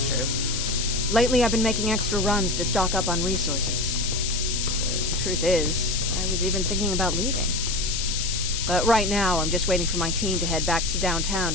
true. Lately, I've been making extra runs to stock up on resources. The truth is, I was even thinking about leaving. But right now, I'm just waiting for my team to head back to downtown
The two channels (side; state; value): left; noise; hiss, 2 dB below the sound